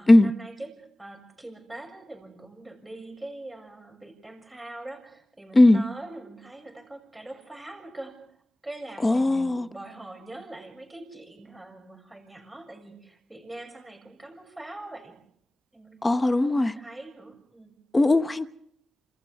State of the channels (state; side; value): normal; both; correlation 0.98